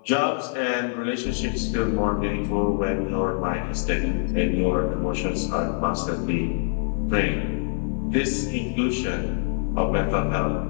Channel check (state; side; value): silent; right; 57 dB below the other